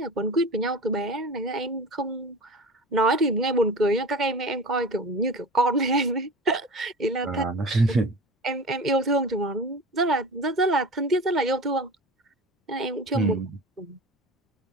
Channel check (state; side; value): normal; both; correlation 0.34